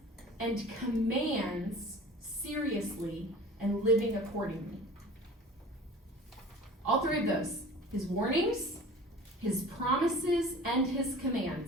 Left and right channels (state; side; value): normal; both; correlation 0.42